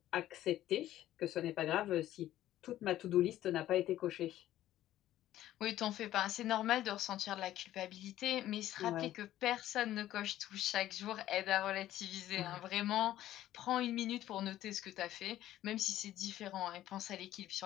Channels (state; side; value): quieter; right; 13.4 dB